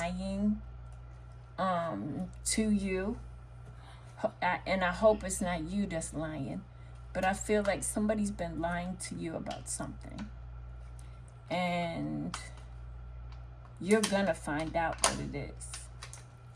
to you. And I hope it's not you that's lying. But I feel like somebody's been lying to you about something. And you're going to find out what it is.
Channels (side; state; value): both; identical; correlation 1.00